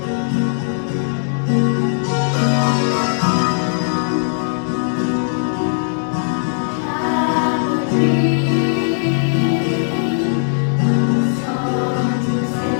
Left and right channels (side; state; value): right; silent; 67 dB below the other